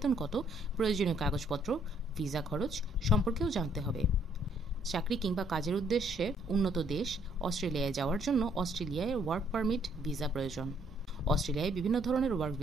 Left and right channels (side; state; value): both; normal; correlation 0.67